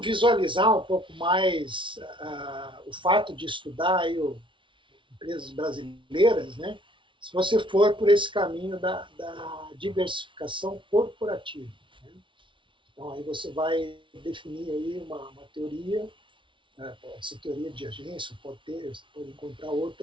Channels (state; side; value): late; left; 0.24 ms